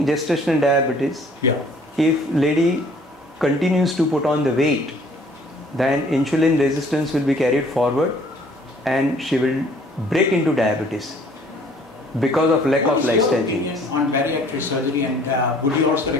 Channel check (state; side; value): normal; both; correlation 0.56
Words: gestational diabetes, yeah, if lady continues to put on the weight, then insulin resistance will be carried forward and she will break into diabetes because of lack of lifestyle changes. On bariatric surgery, and would you also